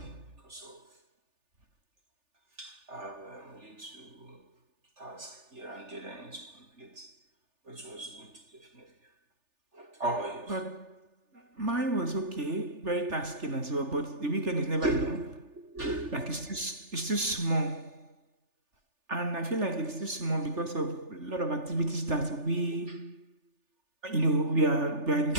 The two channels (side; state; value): left; late; 3.4 ms